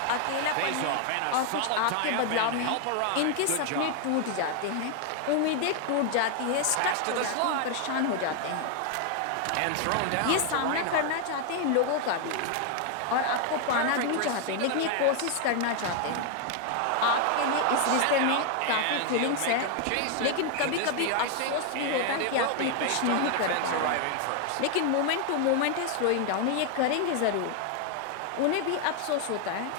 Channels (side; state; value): both; different; correlation 0.00